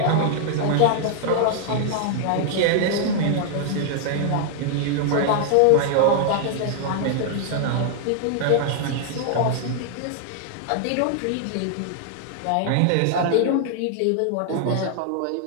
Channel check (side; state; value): both; different; correlation -0.01